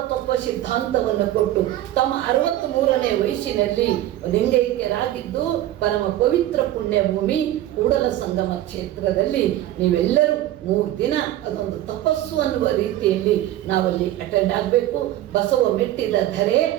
ತತ್ವ ಸಿದ್ಧಾಂತವನ್ನು ಕೊಟ್ಟು ತಮ್ಮ 63ನೇ ವಯಸ್ಸಿನಲ್ಲಿ ಲಿಂಗೈಕ್ಯರಾಗಿದ್ದು ಪರಮ ಪವಿತ್ರ ಪುಣ್ಯ ಭೂಮಿ ಕೂಡಲ ಸಂಗಮ ಕ್ಷೇತ್ರದಲ್ಲಿ ನೀವೆಲ್ಲರೂ 3 ದಿನ ಅದೊಂದು ತಪಸ್ಸು ಅನ್ನುವ ರೀತಿಯಲ್ಲಿ ನಾವಲ್ಲಿ ಅಟೆಂಡ್ ಆಗಬೇಕು. ಬಸವ ಮೆಟ್ಟಿದ ಧರೆ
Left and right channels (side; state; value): left; quieter; 13.8 dB